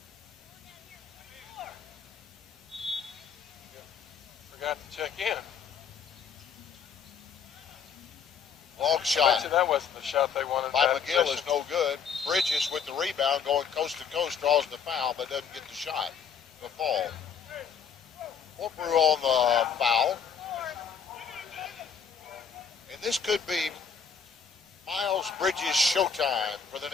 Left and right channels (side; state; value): right; quieter; 6.7 dB